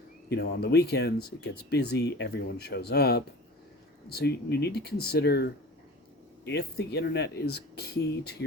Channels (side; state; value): both; normal; correlation 0.38